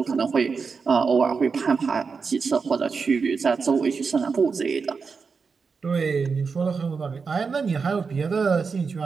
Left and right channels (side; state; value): left; quieter; 5.1 dB